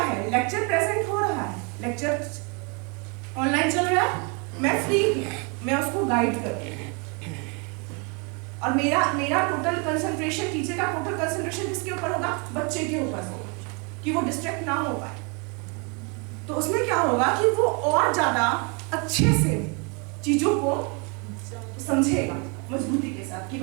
लेक्चर प्रेजेंट हो रहा है, लेक्चर ऑनलाइन चल रहा है, मैं फ्री हूँ, मैं उसको गाइड कर रही हूँ और मेरा टोटल कंसंट्रेशन, टीचर का टोटल कंसंट्रेशन किसके ऊपर होगा, बच्चे के ऊपर होगा कि वो डिस्ट्रैक्ट ना हो पाए। तो उसमें क्या होगा कि वो और ज्यादा अच्छे से चीजों को समझेगा मजबूती के साथ कि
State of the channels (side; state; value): left; quieter; 33.5 dB